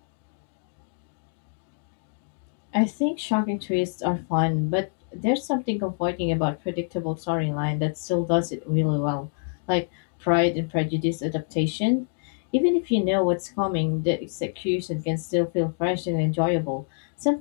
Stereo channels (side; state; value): right; silent; digital silence